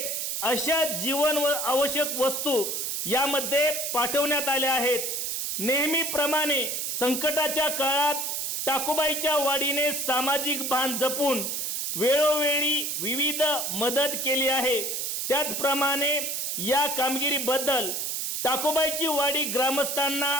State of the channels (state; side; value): noise; right; hiss, 2 dB below the sound